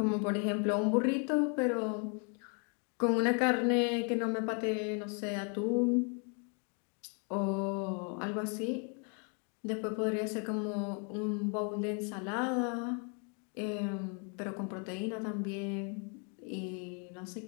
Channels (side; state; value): right; quieter; 38.1 dB